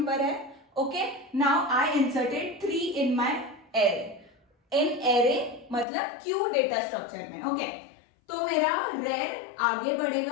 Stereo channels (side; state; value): right; drops out; at 5.9 s